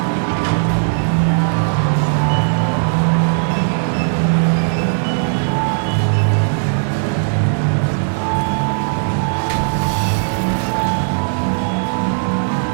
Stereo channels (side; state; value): left; silent; digital silence